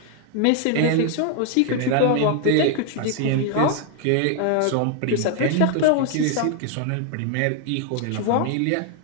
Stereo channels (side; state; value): both; different; correlation 0.00